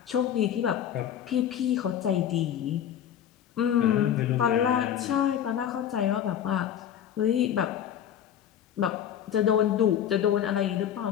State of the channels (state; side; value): quieter; right; 9.7 dB